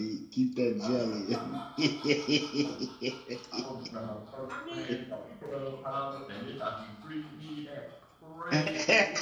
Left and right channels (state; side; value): identical; both; correlation 1.00